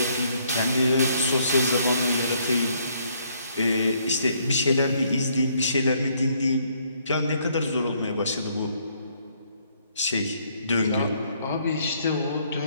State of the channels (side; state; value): both; inverted; correlation -0.68